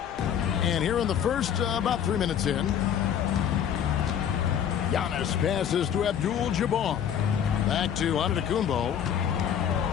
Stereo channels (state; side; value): quieter; right; 8.9 dB